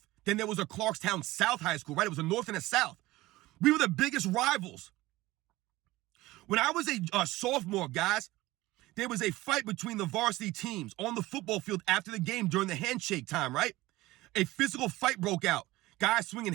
Then there was a Clarkstown South High School, right? It was a North and a South. We were the biggest rivals. When I was a sophomore, guys, there was a fight between the varsity teams on the football field after the game during the handshake time, right? A physical fight broke out. Guys swinging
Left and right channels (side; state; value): left; quieter; 18.6 dB